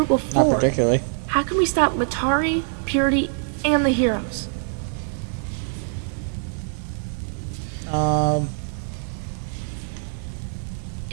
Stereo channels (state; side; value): silent; left; 63 dB below the other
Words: of 4. Not particularly. How can we stop Matari, Purity, and the heroes?